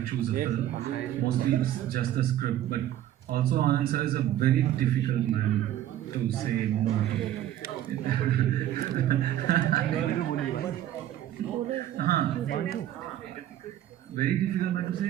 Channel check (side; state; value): left; quieter; 12.4 dB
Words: choose a film. Mostly it's just the script. But also Anand sir is a very difficult man to say no to. Very difficult man to say